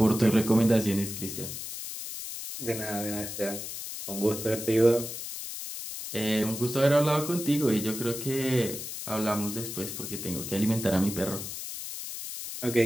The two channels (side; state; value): left; noise; hiss, 8 dB below the sound